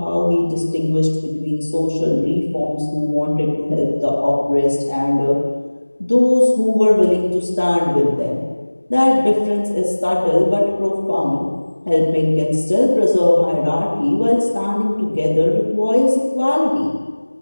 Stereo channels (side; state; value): both; inverted; correlation -1.00